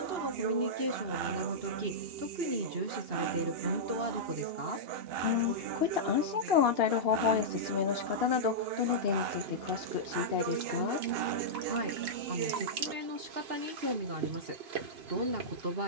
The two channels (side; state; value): left; late; 2.8 ms